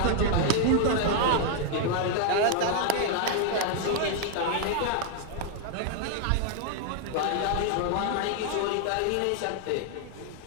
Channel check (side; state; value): both; different; correlation 0.00